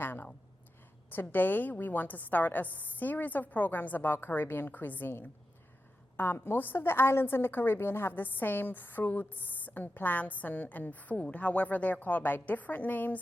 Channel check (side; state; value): both; normal; correlation 0.90